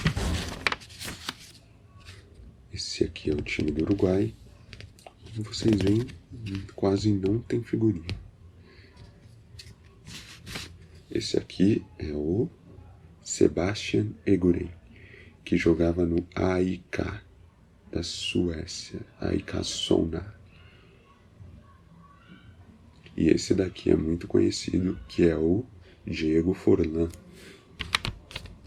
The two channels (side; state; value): both; identical; correlation 1.00